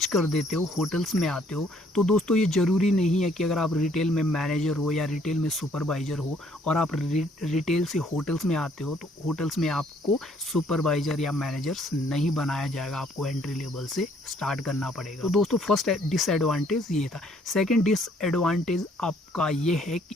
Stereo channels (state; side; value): normal; both; correlation 0.64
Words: कर देते हो, होटल्स में आते हो, तो दोस्तों ये ज़रूरी नहीं है कि अगर आप रिटेल में मैनेजर हो या रिटेल में सुपरवाइज़र हो और आप रिटेल से होटल्स में आते हो, तो होटल्स में आपको सुपरवाइज़र या मैनेजर्स नहीं बनाया जाएगा, आपको एंट्री लेवल से स्टार्ट करना पड़ेगा। तो दोस्तों फर्स्ट डिसएडवांटेज ये था। सेकेंड डिसएडवांटेज आपका ये है कि